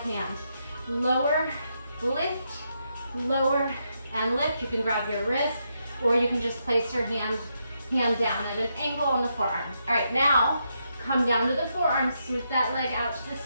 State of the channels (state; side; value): inverted; both; correlation -0.81